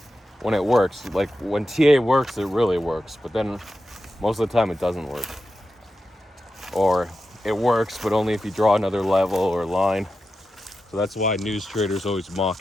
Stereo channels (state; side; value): normal; both; correlation 0.91